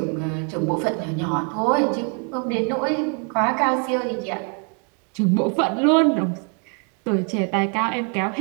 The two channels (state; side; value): quieter; left; 39.5 dB